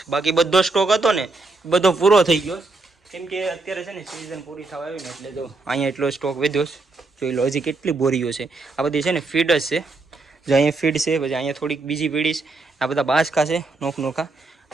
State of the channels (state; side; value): quieter; left; 3.4 dB